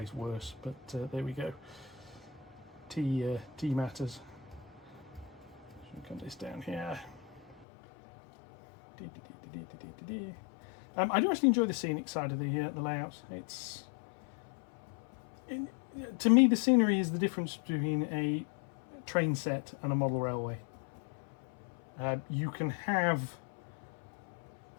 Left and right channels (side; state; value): right; drops out; at 7.7 s